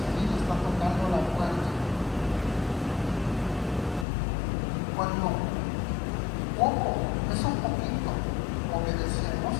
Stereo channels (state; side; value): drops out; right; at 4.0 s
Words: vida, está tocando la puerta. Cuando poco, eso poquito, obedecemos,